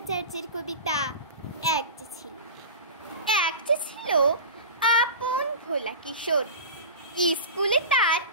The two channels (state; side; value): inverted; both; correlation -0.30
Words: কবিতা এক যে ছিল আপন ভোলা কিশোর। স্কুলে তার